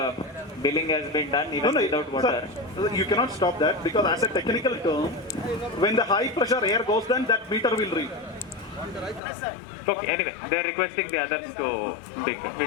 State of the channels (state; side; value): drops out; right; at 9.2 s